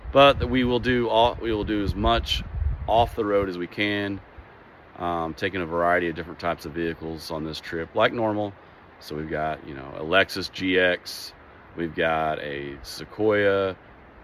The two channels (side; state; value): both; identical; correlation 1.00